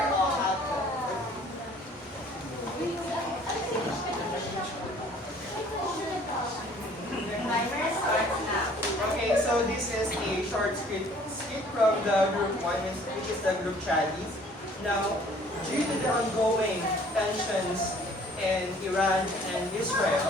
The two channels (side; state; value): both; normal; correlation 0.55